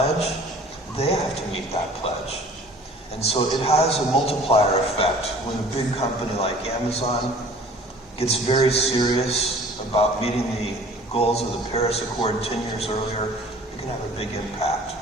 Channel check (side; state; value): both; normal; correlation 0.49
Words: they have to meet that pledge. And so it has a multiplier effect when a big company like Amazon gets very serious about meeting the goals of the Paris Accord 10 years earlier. It can have a big impact.